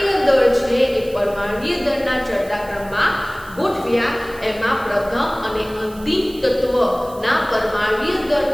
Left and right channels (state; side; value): noise; right; hiss, 21 dB below the sound